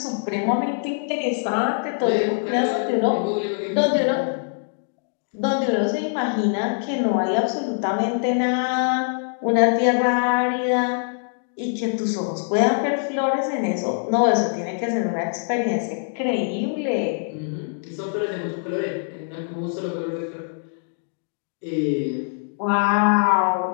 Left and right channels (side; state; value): right; silent; digital silence